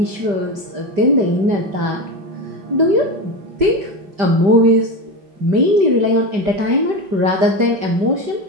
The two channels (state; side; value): late; left; 5.1 ms